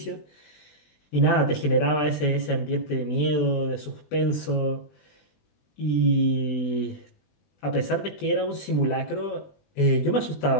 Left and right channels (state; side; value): late; right; 20 ms